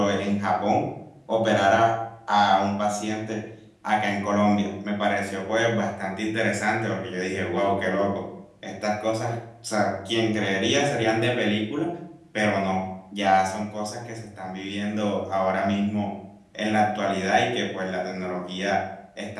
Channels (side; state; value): both; identical; correlation 1.00